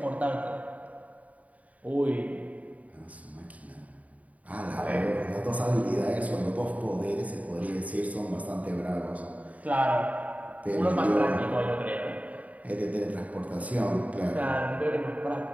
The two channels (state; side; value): late; left; 0.070 ms